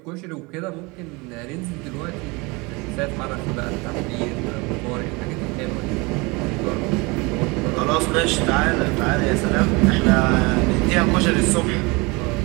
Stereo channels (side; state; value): left; quieter; 26.2 dB